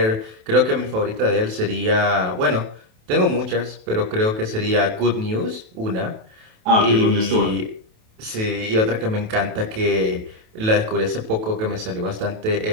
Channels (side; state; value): left; late; 28 ms